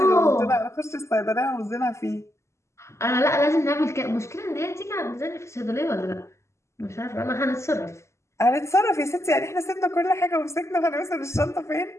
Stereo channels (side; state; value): right; late; 0.13 ms